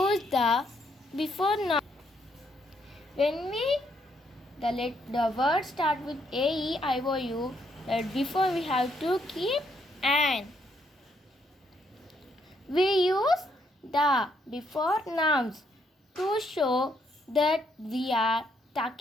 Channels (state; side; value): normal; both; correlation 0.74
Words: the before noun. When the word start with A, E, I, O, U, that before we have to keep an. We use the before nouns to show that we are